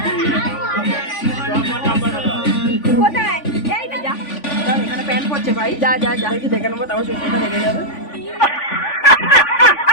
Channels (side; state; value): right; late; 3.5 ms